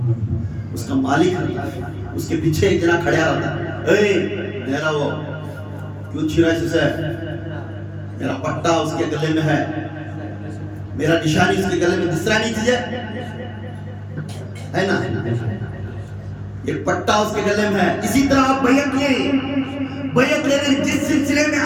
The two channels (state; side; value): identical; both; correlation 1.00